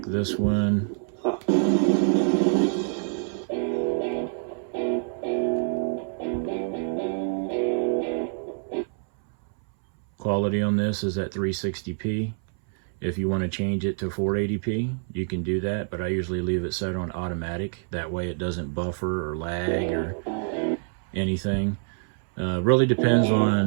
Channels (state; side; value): silent; left; 61 dB below the other